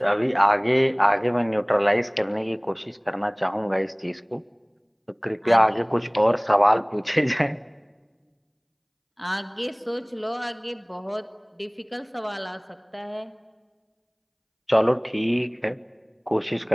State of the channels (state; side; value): identical; both; correlation 1.00